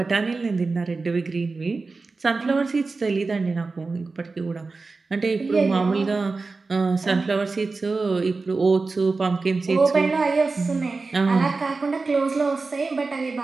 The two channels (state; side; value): quieter; left; 3.9 dB